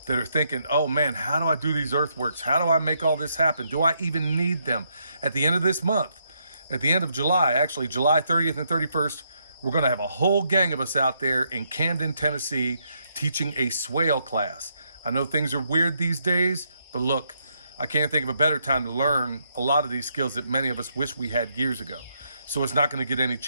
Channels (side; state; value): both; inverted; correlation -0.76